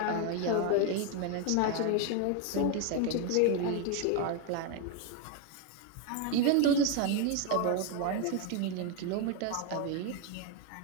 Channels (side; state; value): both; different; correlation 0.01